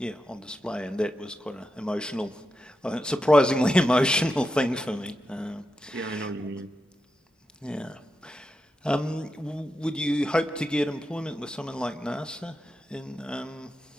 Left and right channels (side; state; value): both; normal; correlation 0.88